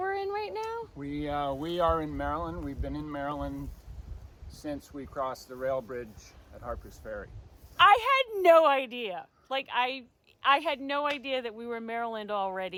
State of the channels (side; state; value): both; identical; correlation 1.00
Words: in right now? We are in Maryland. We've been in Maryland since we crossed the rail bridge at Harper's Ferry. I had no idea. Like I had no idea that we were in Maryland